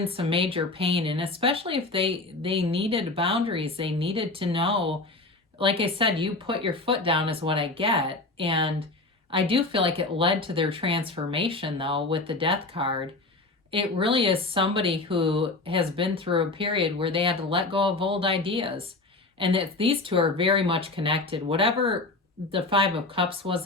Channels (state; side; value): quieter; right; 3.2 dB